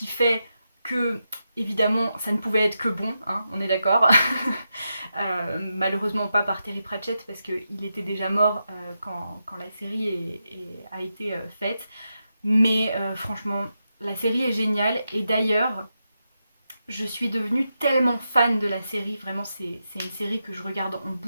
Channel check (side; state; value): both; inverted; correlation -0.87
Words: fait que, évidemment, ça ne pouvait être que bon, hein, on est d'accord. Malheureusement pas par Terry Pratchett, parce qu'il était déjà mort quand la série a été faite. Mais franchement, la série est géniale, et d'ailleurs, je suis devenue tellement fan de la série, vraiment c'est une série que je regarde en